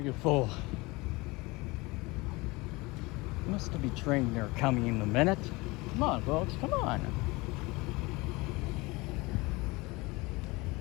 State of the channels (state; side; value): quieter; right; 23.6 dB